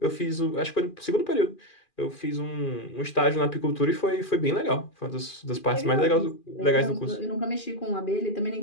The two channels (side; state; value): right; late; 2.4 ms